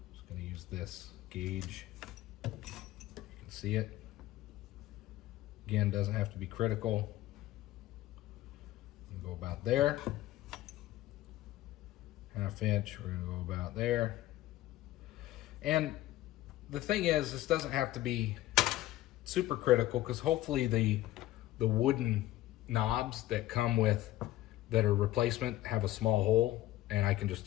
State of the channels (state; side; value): quieter; right; 15.5 dB